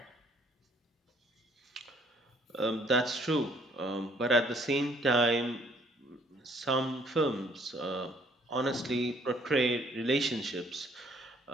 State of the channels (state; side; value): normal; both; correlation 0.62